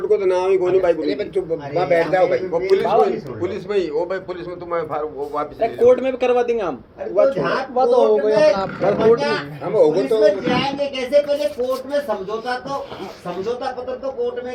को तो नाम ही कोनी भाई बोली, अरे बैठ जाओ भाई, वो सुन पुलिस में ही, वो भाई पुलिस में तुम्हें वो वापस ले कोर्ट में भी करवा देंगे हम। अरे वो जहाँ वो तो हो गया अपना कोर्ट हम होगा तो जाएंगे कैसे, पहले कोर्ट में समझौता पत्र तो कोर्ट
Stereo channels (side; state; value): both; identical; correlation 1.00